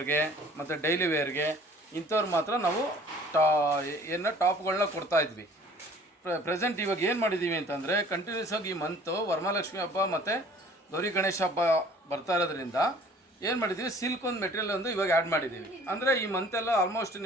ಮತ್ತು ಡೈಲಿ ವೇರ್ಗೆ ಇಂಥವ್ರು ಮಾತ್ರ ನಾವು ಟಾಪ್ಗಳನ್ನ ಕೊಡ್ತಾಯಿದ್ವಿ. ಪ್ರೆಸೆಂಟ್ ಇವಾಗ ಏನು ಮಾಡಿದ್ದೀವಿ ಅಂತಂದರೆ ಕಂಟಿನ್ಯೂಸ್ ಆಗಿ ಈ ಮಂತು ವರಮಹಾಲಕ್ಷ್ಮಿ ಹಬ್ಬ ಮತ್ತು ಗೌರಿ ಗಣೇಶ ಹಬ್ಬ ಬರ್ತಾ ಇರೋದ್ರಿಂದ ಏನು ಮಾಡಿದ್ದೀವಿ, ಸಿಲ್ಕ್ ಒಂದು ಮೆಟೀರಿಯಲ್ ಒಂದು ಇವಾಗ ಆ್ಯಡ್ ಮಾಡಿದ್ದೀವಿ. ಅಂದರೆ ಈ ಮಂತೆಲ್ಲ ಆಲ್ಮೋಸ್ಟ್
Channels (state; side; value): normal; both; correlation 0.52